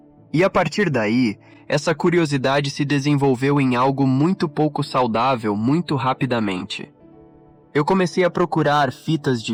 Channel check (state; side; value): identical; both; correlation 1.00